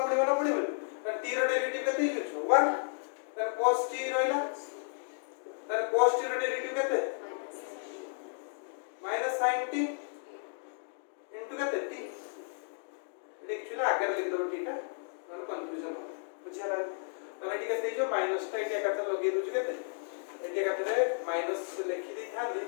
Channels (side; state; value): right; silent; digital silence